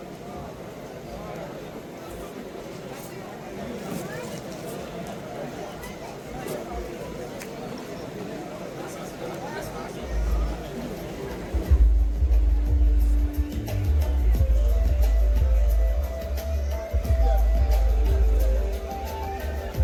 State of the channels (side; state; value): both; identical; correlation 1.00